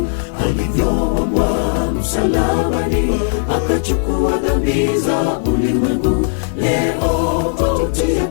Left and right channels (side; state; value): right; silent; 69 dB below the other